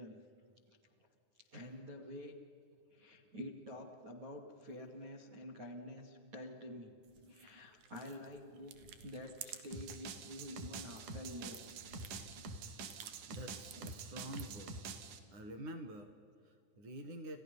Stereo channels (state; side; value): late; left; 10 ms